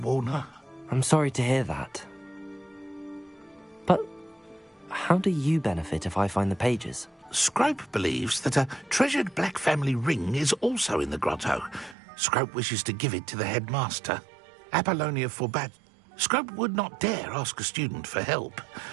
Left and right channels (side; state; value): left; drops out; at 12.0 s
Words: her. I'm sorry to hear that. But how do you benefit if I find the pages? Scrope believes that a treasured Black family ring is also in the grotto. Scrope wishes to give it to the headmaster. Apollonia forbade. Scrope would not dare ask a student for help,